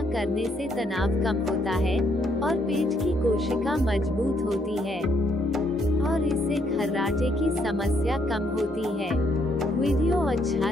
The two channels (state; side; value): normal; both; correlation 0.71